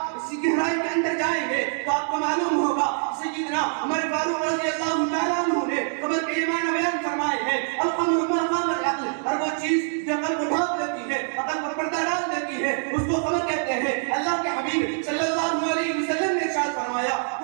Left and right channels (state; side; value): silent; left; 62 dB below the other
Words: اس کی گہرائی کے اندر جائیں گے تو آپ کو معلوم ہوگا سیدنا عمر فاروق رضی اللہ تعالیٰ عنہ نے خمر کے معنی بیان فرمائے ہیں، الخمر ما خام العقل، ہر وہ چیز جو عقل کو ڈھانپ دیتی ہے، عقل پر پردہ ڈال دیتی ہے، اس کو خمر کہتے ہیں۔ اللہ کے حبیب صلی اللہ علیہ وسلم نے ارشاد فرمایا،